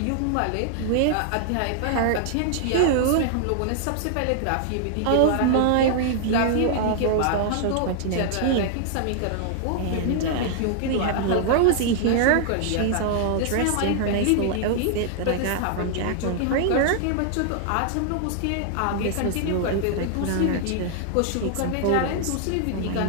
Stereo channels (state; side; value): different; both; correlation 0.00